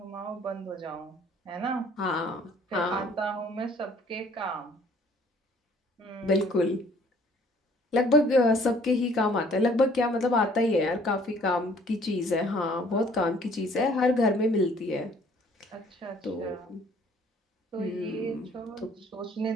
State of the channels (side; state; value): both; normal; correlation 0.57